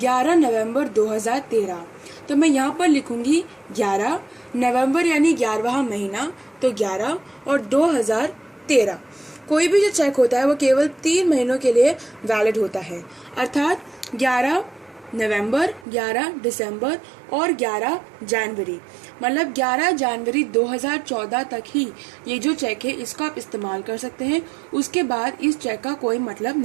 नवंबर 2013, तो मैं यहाँ पर लिखूंगी 11 नवंबर यानी 11वां महीना, तो 11 और 2013। कोई भी जो चेक होता है वो केवल 3 महीनों के लिए वैलिड होता है, अर्थात 11 नवंबर, 11 दिसंबर और 11 जनवरी, मतलब 11 जनवरी 2014 तक ही ये जो चेक है इसका आप इस्तेमाल कर सकते हैं। उसके बाद इस चेक का कोई मतलब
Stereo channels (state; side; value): drops out; left; at 15.9 s